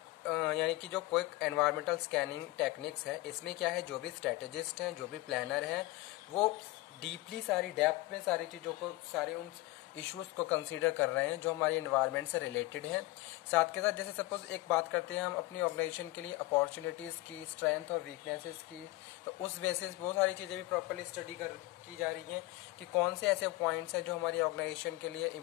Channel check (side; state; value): right; quieter; 19.3 dB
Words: यानी कि जो quick environmental scanning techniques है, इसमें क्या है, जो भी स्ट्रेटेजिस्ट हैं, जो भी प्लानर हैं, वो डीपली सारी डेप्थ में सारी चीज़ों को, सारे उन इश्यूज को कंसीडर कर रहे हैं जो हमारी एनवायरनमेंट से रिलेटेड हैं। साथ के साथ जैसे सपोज एक बात करते हैं हम अपनी ऑर्गेनाइजेशन के लिए अपॉर्चुनिटीज की, स्ट्रेंथ और वीकनेसेस की, तो उस बेसिस बहुत सारी चीजें भी प्रॉपरली स्टडी की जा रही हैं कि कौन से ऐसे पॉइंट्स हैं जो हमारी ऑर्गेनाइजेशन के लिए